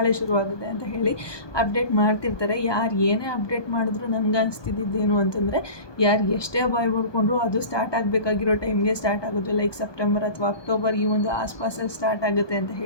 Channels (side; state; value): right; late; 1.2 ms